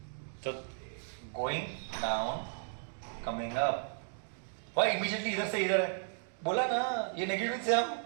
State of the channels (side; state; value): left; silent; digital silence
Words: तो going down, coming up. Why immediately इधर से इधर है? बोला ना, ये नेगेटिव से हम